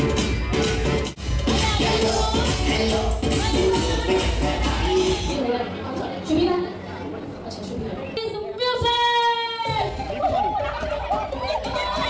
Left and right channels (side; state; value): both; identical; correlation 1.00